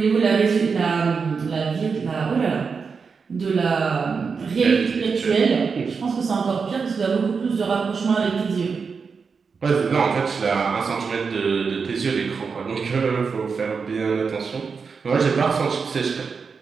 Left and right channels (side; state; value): left; quieter; 5.4 dB